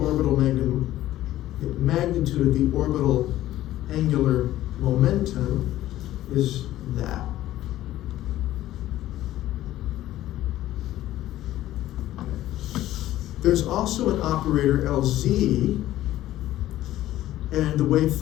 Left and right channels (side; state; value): right; quieter; 14.2 dB